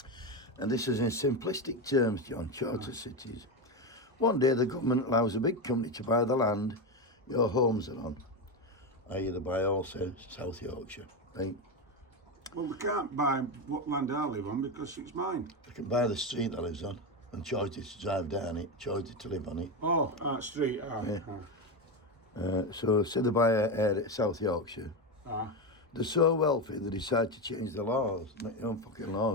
And this is in simplistic terms, John, charter cities. One day the government allows a big company to buy the land your homes are on. I.e. they buy also South Yorkshire. Right? Well, we can't buy what land I live on because it's mine. They can buy the street that lives on and charge it to drive down it, charge it to live on it. Oh, street. Yeah. So say they buy a South Yorkshire. They're so wealthy they decide to change the laws, make their own fucking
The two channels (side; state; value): both; normal; correlation 0.13